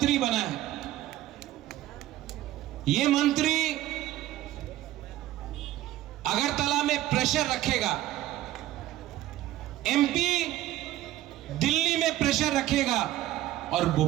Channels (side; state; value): left; quieter; 14.4 dB